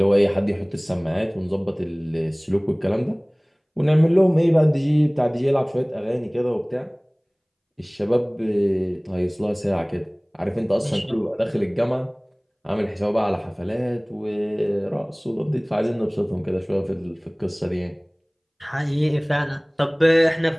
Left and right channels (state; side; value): identical; both; correlation 1.00